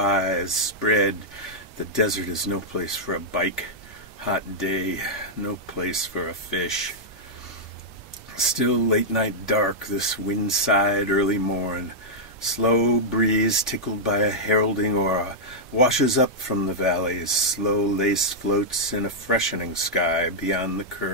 spread. The desert is no place for a bike. Hot day, no place for a fish. Still late night dark, this wind-side early morn. Slow breeze tickled by a heralding aura washes up from the valleys. Slow lace floats in a freshening sky beyond the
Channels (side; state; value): both; normal; correlation -0.06